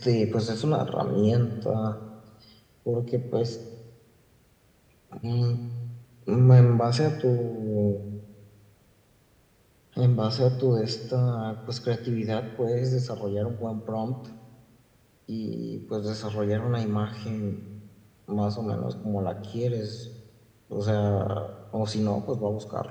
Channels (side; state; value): both; identical; correlation 1.00